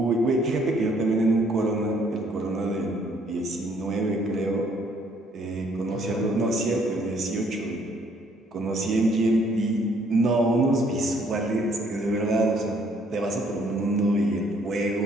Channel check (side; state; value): both; normal; correlation 0.65